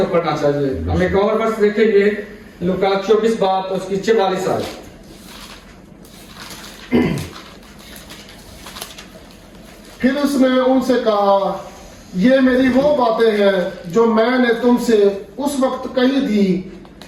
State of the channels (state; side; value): identical; both; correlation 1.00